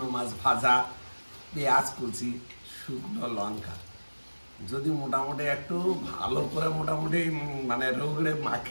মাছ ভাজা, পেঁয়াজ কুচি, শুকনো লঙ্কা। যদি মোটামুটি একটু ভালো করে মোটামুটি মানে রোগড়ে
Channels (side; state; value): both; inverted; correlation -1.00